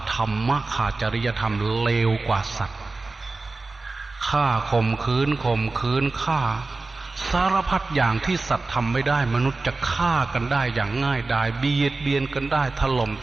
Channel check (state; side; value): quieter; left; 3.6 dB